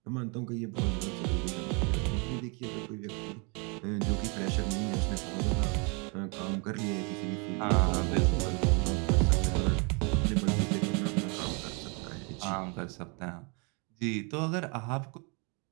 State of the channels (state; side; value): quieter; left; 33.4 dB